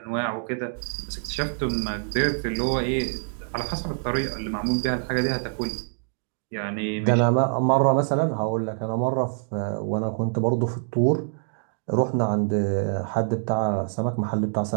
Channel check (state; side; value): silent; left; digital silence